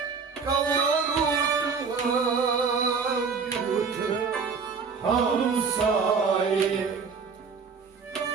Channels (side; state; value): left; quieter; 5.4 dB